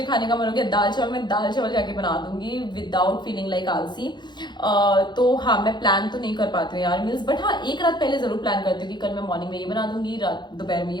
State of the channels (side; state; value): right; late; 0.21 ms